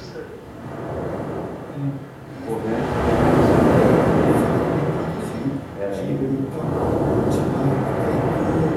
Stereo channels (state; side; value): identical; both; correlation 1.00